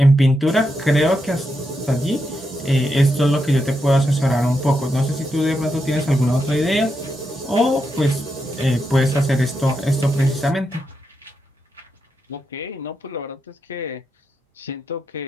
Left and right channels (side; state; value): both; normal; correlation 0.84